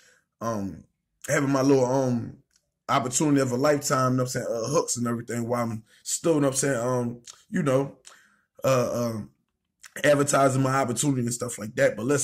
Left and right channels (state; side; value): identical; both; correlation 1.00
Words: having my little opportunity of a lifetime. You know what I'm saying, hooks and everything while I'm still, you know what I'm saying, you know, advertising my opportunity and stuff like that. But